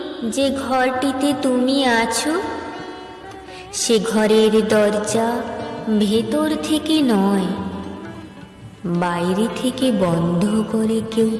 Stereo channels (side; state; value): both; identical; correlation 1.00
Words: যে ঘরটিতে তুমি আছো, সে ঘরের দরজা ভেতর থেকে নয় বাইরে থেকে বন্ধ করে কেউ